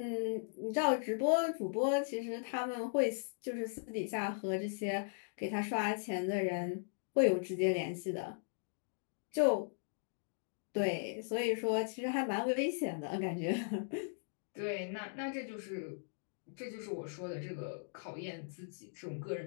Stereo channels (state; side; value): silent; right; digital silence